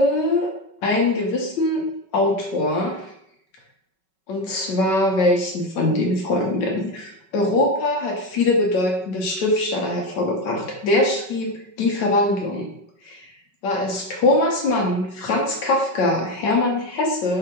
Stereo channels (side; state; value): right; late; 5.3 ms